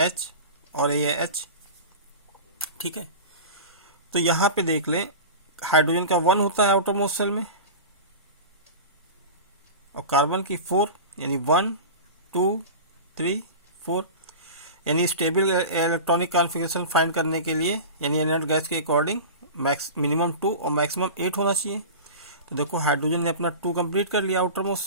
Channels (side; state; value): both; inverted; correlation -0.31